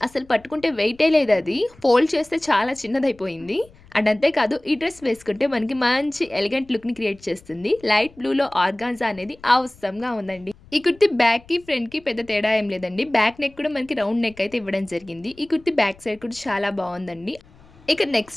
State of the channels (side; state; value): left; noise; rumble, 26 dB below the sound